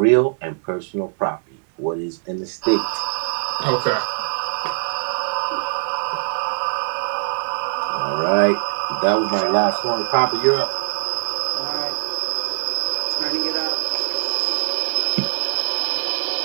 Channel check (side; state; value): left; silent; digital silence